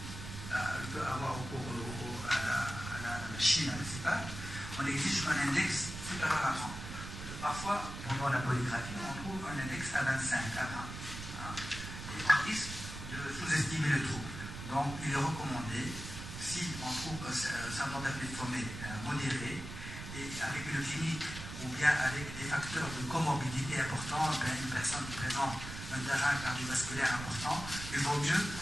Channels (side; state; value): right; noise; rumble, 9 dB below the sound